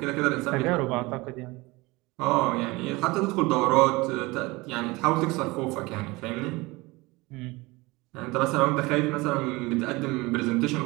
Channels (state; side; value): quieter; left; 22.7 dB